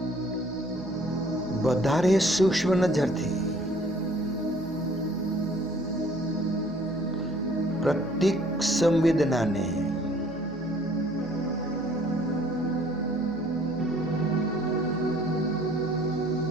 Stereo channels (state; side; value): noise; left; hum, 18 dB below the sound